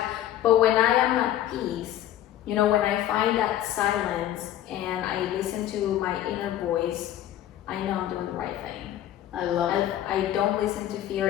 But when I am at peace, when I find that silence and I listen to my inner voice, I know I'm doing the right thing. I love it. I don't listen to fear.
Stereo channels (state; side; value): quieter; right; 12.3 dB